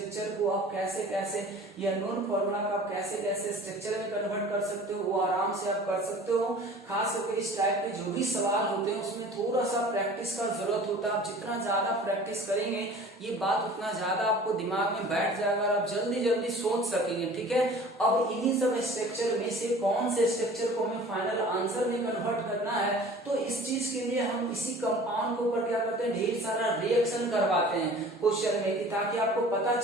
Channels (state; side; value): normal; both; correlation 0.45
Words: को आप कैसे कैसे, ये अननोन फॉर्मूला का आप कैसे कैसे स्ट्रक्चर में कन्वर्ट कर सकते हो, वो आराम से आप कर सकते हो। खास करके इस टाइप के जो भी सवाल होते हैं उसमें थोड़ा सा प्रैक्टिस का जरूरत होता है। आप जितना ज्यादा प्रैक्टिस करेंगे ये बात उतना ज्यादा आपको दिमाग में बैठ जाएगा और आप जल्दी जल्दी सोच सकेंगे, ठीक है। अब इन्हीं सब स्ट्रक्चर में से कौन से स्ट्रक्चर को हमें फाइनल आंसर में कन्वर्ट करना है, तो इस चीज के लिए हम इसी कंपाउंड के ऊपर क्या करते हैं, ढेर सारा रिएक्शन करवाते हैं क्वेश्चन में, कि ताकि आपको पता